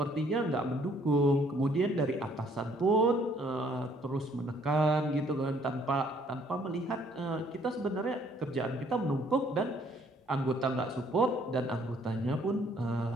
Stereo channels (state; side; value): normal; both; correlation 0.63